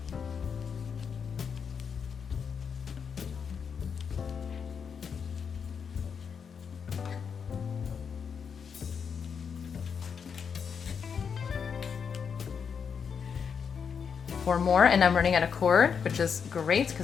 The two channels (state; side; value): quieter; right; 6.6 dB